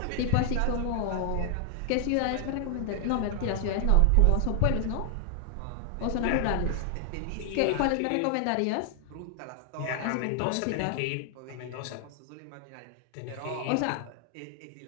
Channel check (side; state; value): both; different; correlation 0.00